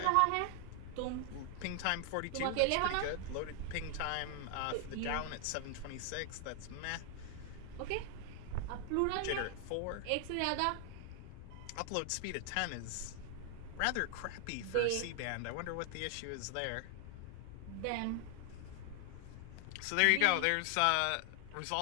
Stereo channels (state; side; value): different; both; correlation 0.00